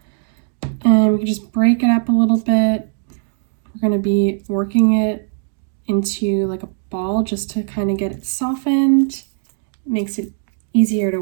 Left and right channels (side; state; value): left; silent; digital silence